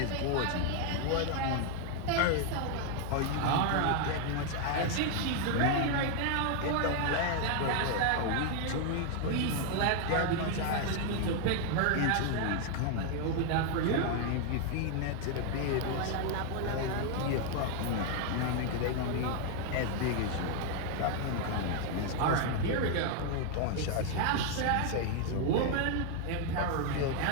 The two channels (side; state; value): both; different; correlation 0.00